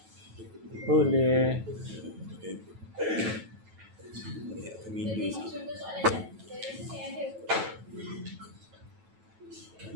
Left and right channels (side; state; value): left; late; 9.2 ms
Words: Boleh. Jadi contoh soalan je. Saya rasa saya ada.